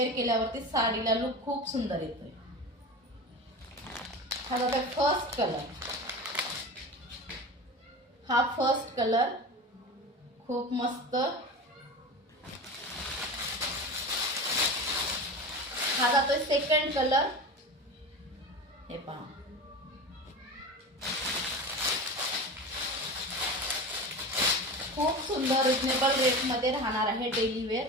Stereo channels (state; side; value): normal; both; correlation 0.29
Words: केल्यावरती साडीला लुक खूप सुंदर येतोय। हा बघा फर्स्ट कलर, हा फर्स्ट कलर खूप मस्त। हा जातोय सेकंड कलर। हे पहा, खूप सुंदर रिजनेबल रेट मध्ये राहणार आहे। डेली वेअर